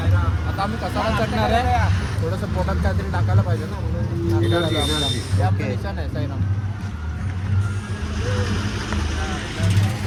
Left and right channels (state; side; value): identical; both; correlation 1.00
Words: आता आम्ही कसारा चढणार आहे. थोडंसं पोटात काहीतरी टाकायला पाहिजे ना.